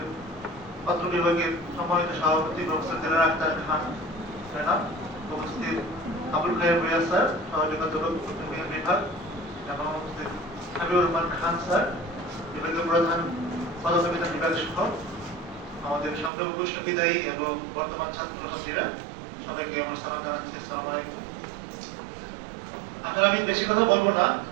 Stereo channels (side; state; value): left; drops out; at 16.3 s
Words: পত্র বিভাগের সম্মানিত সভাপতি প্রফেসর দিলারা আক্তার খান ম্যাডাম, উপস্থিত আবুল খায়ের ভূঁইয়া স্যার, সহযোগী অধ্যাপক বিভাগ, এবং উপস্থিত হাবিবুর রহমান খান স্যার, বিভাগীয় প্রধান পদার্থবিজ্ঞান বিভাগ সহ আমাদের সামনে উপস্থিত বিদায়ী এবং বর্তমান ছাত্রছাত্রীরা, সবাইকে আমার সালাম জানাচ্ছি। আসসালামু আলাইকুম। আসলে আমি বেশি কথা বলবো না।